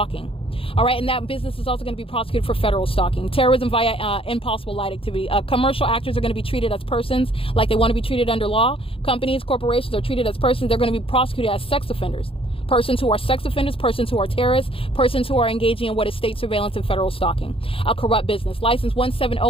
All right, and that business is also going to be prosecuted for federal stalking. Terrorism via impossible light activity. Commercial actors are going to be treated as persons like they want to be treated under law. Companies, corporations are treated as persons. They're going to be prosecuted as sex offenders. Persons who are sex offenders, persons who are terrorists, persons who are engaging in what is state surveillance and federal stalking. A corrupt business. License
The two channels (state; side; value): late; right; 0.27 ms